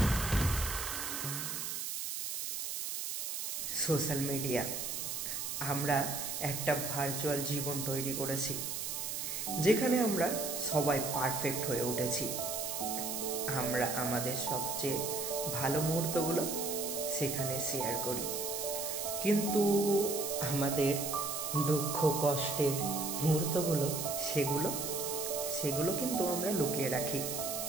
Social media, আমরা একটা virtual জীবন তৈরি করেছি যেখানে আমরা সবাই পারফেক্ট হয়ে উঠেছি। আমরা আমাদের সবচেয়ে ভালো মুহূর্তগুলো সেখানে শেয়ার করি, কিন্তু আমাদের দুঃখ কষ্টের মুহূর্তগুলো সেগুলো কিন্তু আমরা লুকিয়ে রাখি।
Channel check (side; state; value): right; noise; hiss, 3 dB below the sound